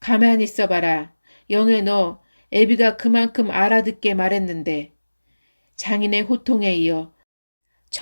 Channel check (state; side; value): inverted; both; correlation -1.00